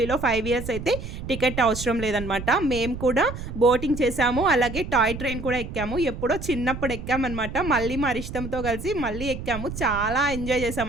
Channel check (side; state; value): right; noise; rumble, 8 dB below the sound